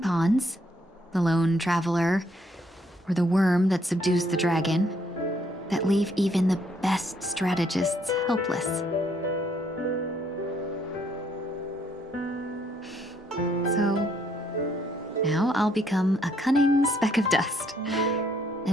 the lone traveler, or the worm that subdues the dragon, that leave even the best strategists helpless. So, now I'll become a cunning speck of dust,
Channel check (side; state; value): both; normal; correlation 0.69